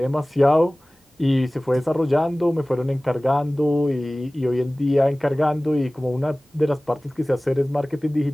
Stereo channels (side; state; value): both; normal; correlation 0.98